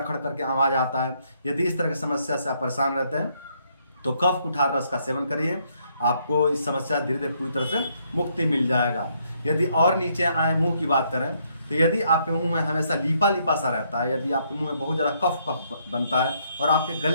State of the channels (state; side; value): inverted; both; correlation -0.72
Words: खड़ करके आवाज़ आता है, यदि इस तरह की समस्या से आप परेशान रहते हैं तो कफ कुठार रस का सेवन करिए, आपको इस समस्या से धीरे धीरे पूरी तरह से मुक्ति मिल जाएगा। यदि और नीचे आए, मुंह की बात करें तो यदि आपके मुंह में हमेशा लीपा लीपा सा रहता है, यदि आपके मुंह में बहुत ज़्यादा कफ बनता है और आपके